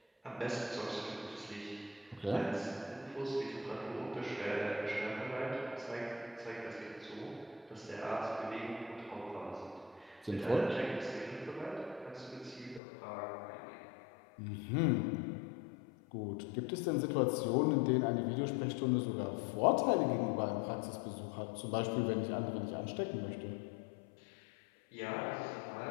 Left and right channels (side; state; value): right; drops out; at 12.8 s